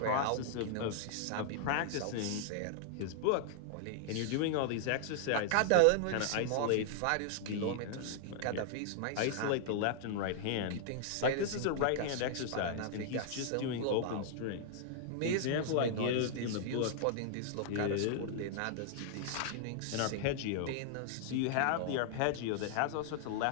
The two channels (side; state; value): both; different; correlation -0.01